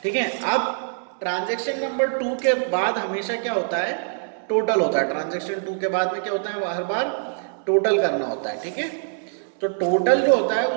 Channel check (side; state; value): left; silent; digital silence